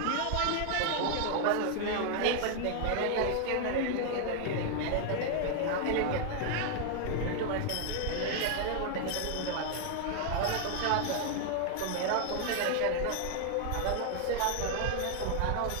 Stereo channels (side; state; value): both; different; correlation 0.00